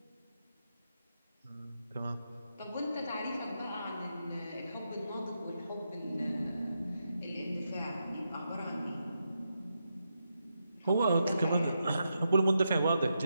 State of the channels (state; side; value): inverted; both; correlation -0.84